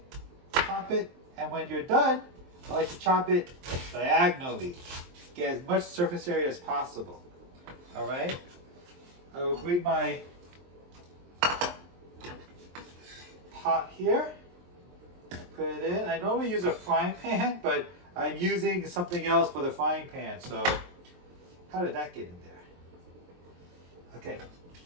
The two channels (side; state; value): left; late; 23 ms